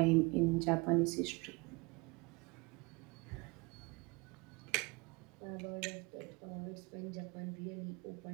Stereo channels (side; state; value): left; quieter; 26.6 dB